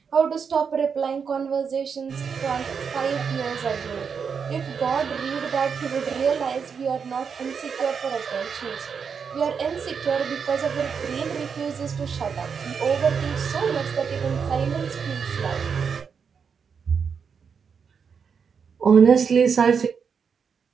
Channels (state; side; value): quieter; left; 6.3 dB